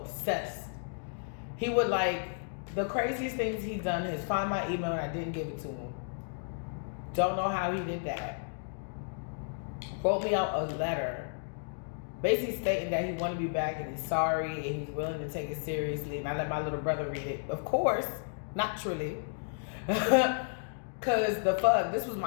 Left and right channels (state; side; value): silent; right; digital silence